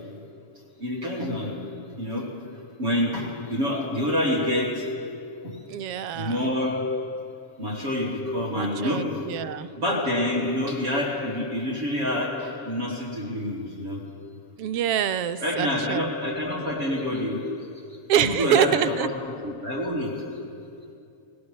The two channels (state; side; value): late; left; 7.4 ms